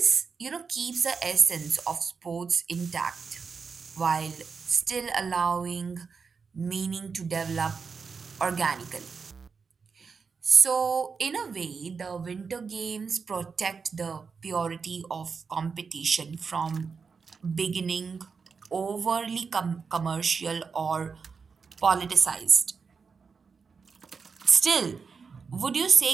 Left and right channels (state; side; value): quieter; left; 5.4 dB